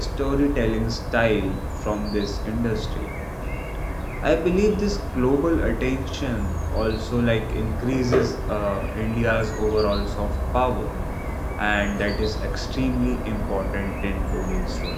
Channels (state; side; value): identical; both; correlation 1.00